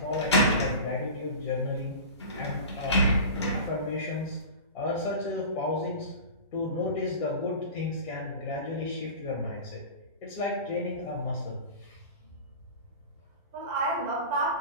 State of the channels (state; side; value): inverted; both; correlation -0.33